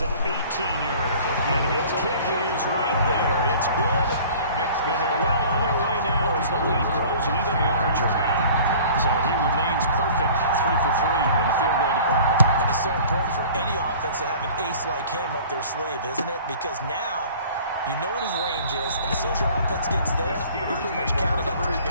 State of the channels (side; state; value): both; inverted; correlation -0.47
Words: an 18-yarder. And his kick is right there. It's good. And they're well on their way now as the lead grows even larger. So he remains perfect, 3 for 3 in the field goal department. And it's so important for any offense to have an ace like him up their sleeve, isn't it? Because now you know what his range is, and as soon as your offense gets there, you're pretty much counting on 3